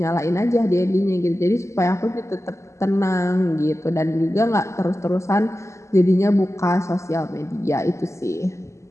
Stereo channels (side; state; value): right; late; 0.14 ms